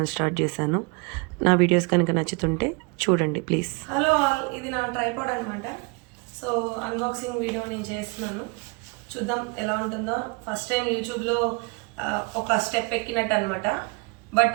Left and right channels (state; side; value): quieter; left; 30.6 dB